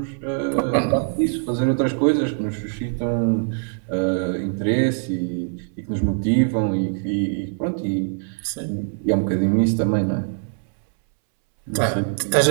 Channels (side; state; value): left; silent; 64 dB below the other